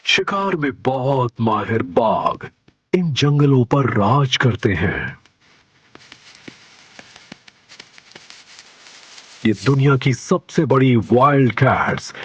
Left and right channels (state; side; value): identical; both; correlation 1.00